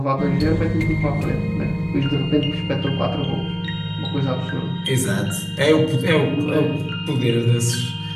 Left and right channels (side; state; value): both; identical; correlation 1.00